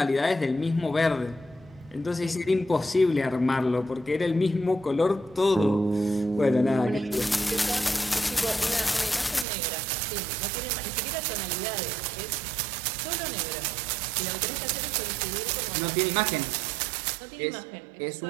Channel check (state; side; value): drops out; left; at 9.5 s